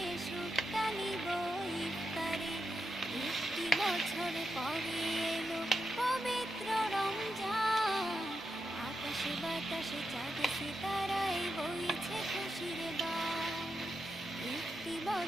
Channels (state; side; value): normal; both; correlation 0.86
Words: সুখটা নিব ইফতারে। একটি বছর পরে এলো পবিত্র রমজান, আকাশে বাতাসে চাঁদ সিতারায় বইছে খুশির বান। একটি